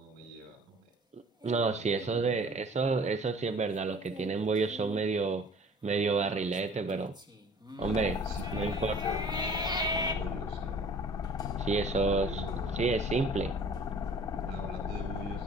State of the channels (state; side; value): normal; both; correlation 0.49